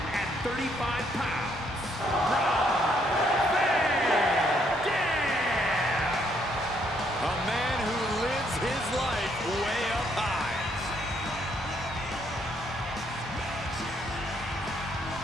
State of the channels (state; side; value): normal; both; correlation 0.71